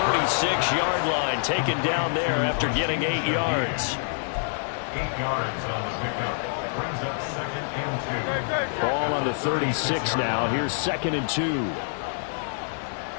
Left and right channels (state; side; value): silent; right; digital silence